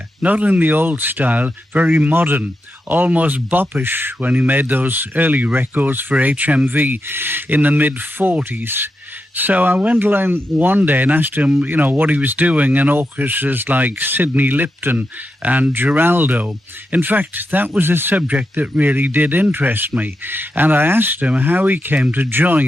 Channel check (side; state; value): both; normal; correlation 0.87